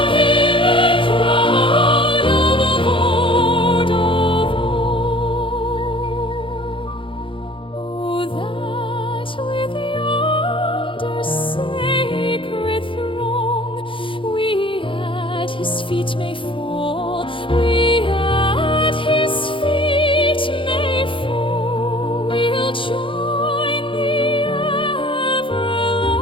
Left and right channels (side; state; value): right; late; 0.25 ms